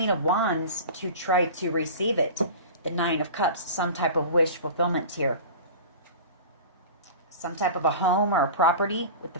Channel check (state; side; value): inverted; both; correlation -0.35